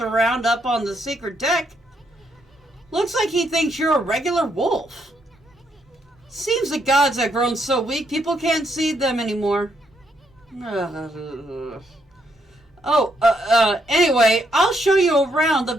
up on the secret deck looks like he thinks you're a regular wolf. Seems the gods have grown so weak, people can't see them anymore. Anyway, I'll show you around the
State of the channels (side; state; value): both; normal; correlation 0.75